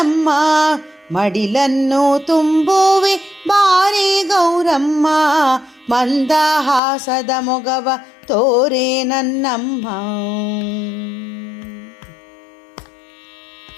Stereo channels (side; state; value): right; drops out; at 6.8 s